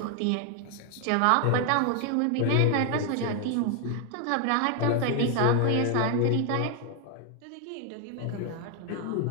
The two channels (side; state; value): both; different; correlation 0.01